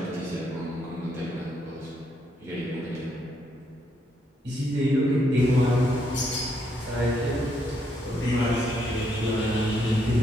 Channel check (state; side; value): normal; both; correlation 0.75